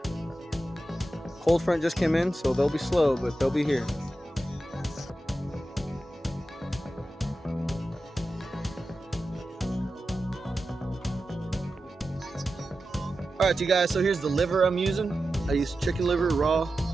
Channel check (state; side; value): normal; both; correlation 0.92